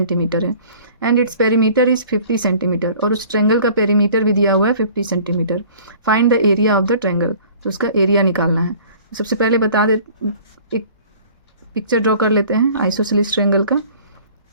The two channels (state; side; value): inverted; both; correlation -0.49